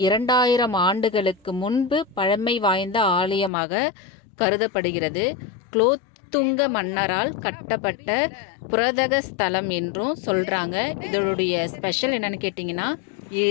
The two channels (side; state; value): right; drops out; at 3.5 s